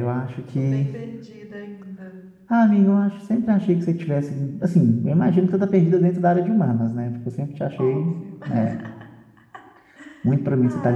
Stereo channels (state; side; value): identical; both; correlation 1.00